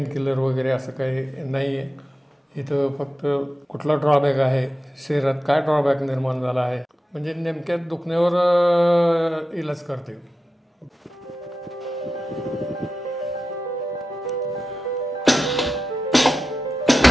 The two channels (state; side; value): normal; both; correlation 0.92